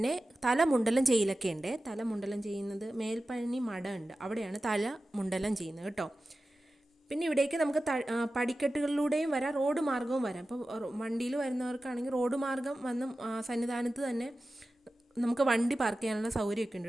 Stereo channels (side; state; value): both; normal; correlation 0.94